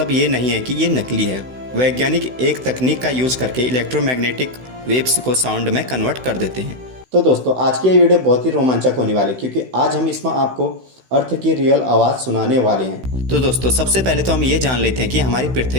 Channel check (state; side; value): late; left; 16 ms